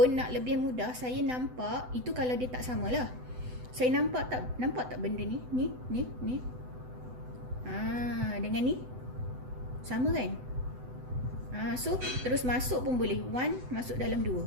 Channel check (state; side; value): late; left; 8.0 ms